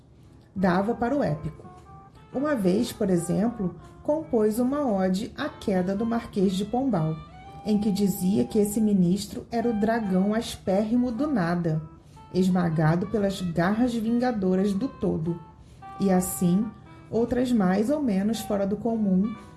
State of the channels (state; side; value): identical; both; correlation 1.00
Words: Dava para o épico. Uma vez, por exemplo, compôs uma ode à queda do Marquês de Pombal, em que dizia que esse ministro era o dragão aspérrimo do nada, esmagado pelas garras vingadoras do todo. E assim, outras mais ou menos fora do comum,